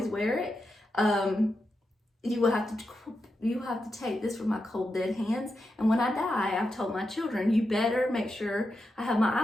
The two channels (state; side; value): normal; both; correlation 0.87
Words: wear it. You have to take this from my cold dead hands. And when I die, I've told my children, you better make sure I have my